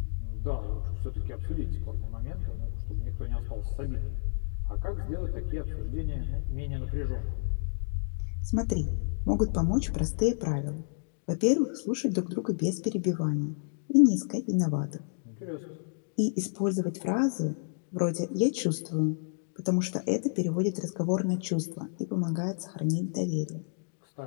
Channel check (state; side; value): silent; right; digital silence